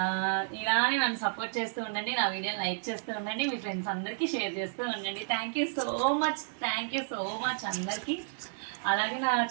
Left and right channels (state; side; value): silent; left; digital silence